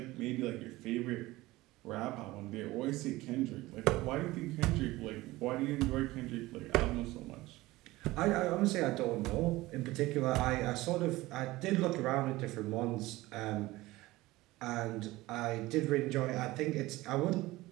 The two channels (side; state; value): left; quieter; 19.0 dB